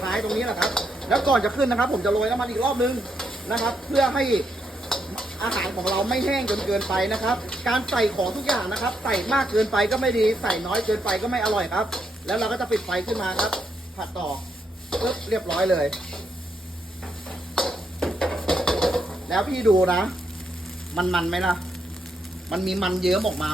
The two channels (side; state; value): both; normal; correlation 0.79